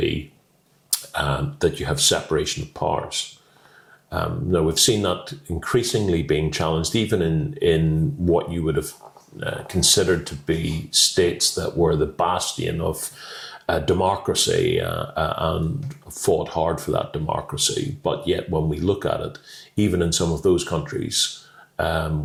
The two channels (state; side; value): identical; both; correlation 1.00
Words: that you have separation of powers. Now, we've seen that increasingly being challenged, even in what you would have considered to be states that were the bastion of democracy and fought hard for that democracy. But yet, when we look at it, even in some of those countries,